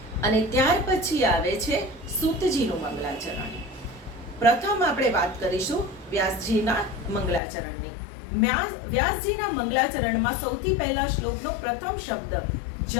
અને ત્યાર પછી આવે છે સૂતજીનું મંગલાચરણ. પ્રથમ આપણે વાત કરીશું વ્યાસજીના મંગલાચરણની. વ્યાસજીના મંગલાચરણમાં સૌથી પહેલા શ્લોકનો પ્રથમ શબ્દ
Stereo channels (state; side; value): drops out; right; at 7.4 s